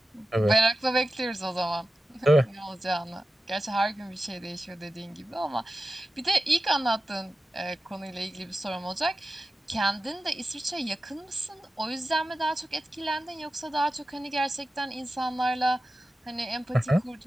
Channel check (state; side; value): normal; both; correlation 0.93